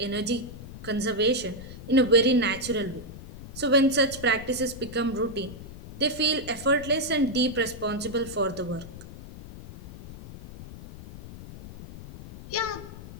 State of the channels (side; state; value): left; noise; rumble, 14 dB below the sound